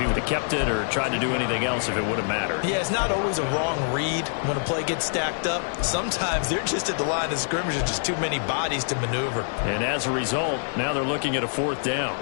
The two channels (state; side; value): silent; right; 62 dB below the other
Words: would have kept it or tried to do anything else if it would have mattered. Yeah, it's not always a wrong read when a play gets stacked up. Sometimes they're just at the line of scrimmage with just too many bodies to maneuver. And as a result, now they're looking at a fourth down.